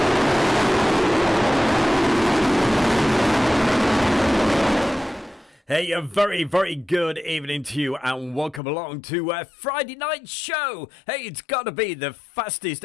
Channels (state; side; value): drops out; right; at 8.6 s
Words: Hey, a very, very good evening to you and welcome along to Friday night show. Hey, it's got to be the fastest